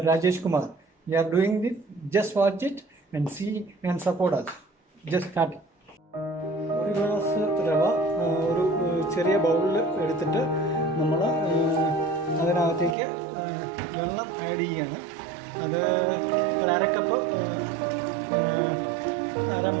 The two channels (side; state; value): left; drops out; at 13.0 s